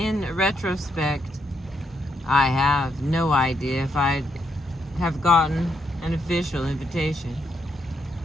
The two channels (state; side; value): normal; both; correlation 0.78